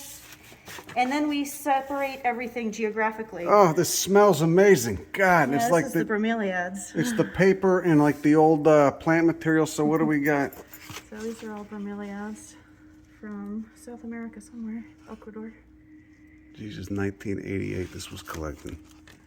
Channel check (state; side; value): identical; both; correlation 1.00